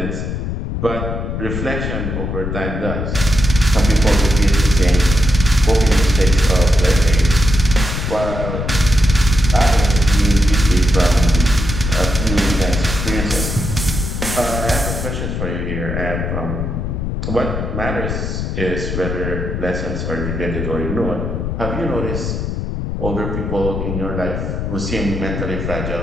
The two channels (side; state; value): left; noise; rumble, 3 dB below the sound